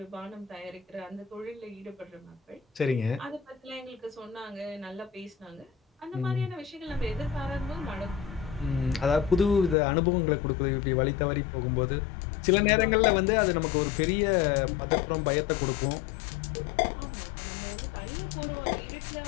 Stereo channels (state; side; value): drops out; right; at 9.8 s